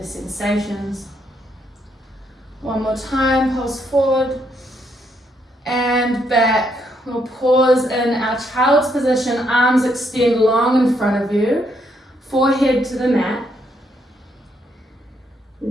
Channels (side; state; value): both; normal; correlation 0.75